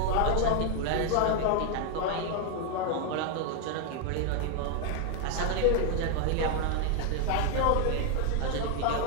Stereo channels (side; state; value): both; different; correlation 0.00